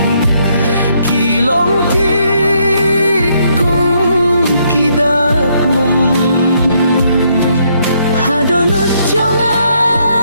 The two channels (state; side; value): inverted; both; correlation -0.72